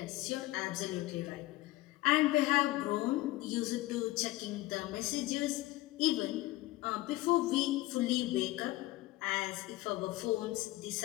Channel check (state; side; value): quieter; right; 18.4 dB